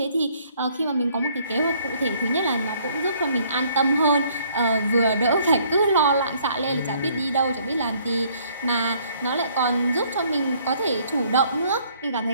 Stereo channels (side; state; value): both; inverted; correlation -0.62